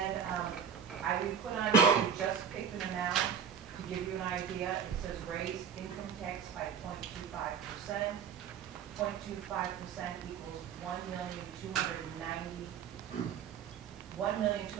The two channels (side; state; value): left; quieter; 7.2 dB